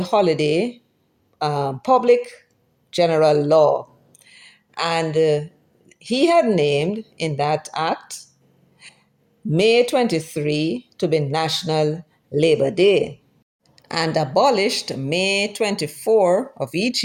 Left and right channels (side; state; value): both; identical; correlation 1.00